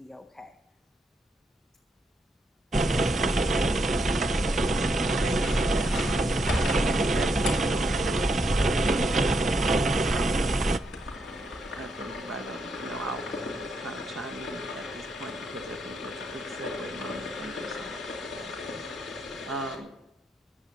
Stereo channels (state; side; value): normal; both; correlation 0.79